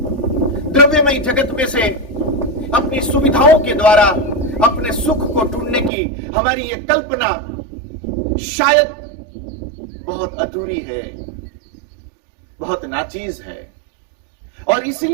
द्रव्यमय जगत में से अपनी सुविधाओं के द्वारा अपने सुख को ढूंढने की हमारी ये कल्पना शायद बहुत अधूरी है, बहुत नाचीज है, और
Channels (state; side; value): drops out; left; at 5.9 s